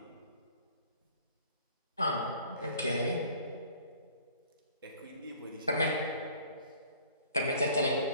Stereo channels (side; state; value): both; inverted; correlation -0.51